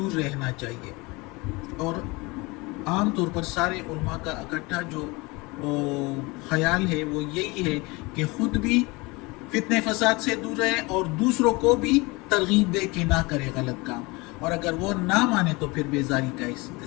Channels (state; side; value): quieter; right; 24.9 dB